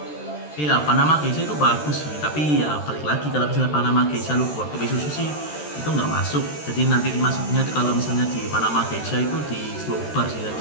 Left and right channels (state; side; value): late; right; 13 ms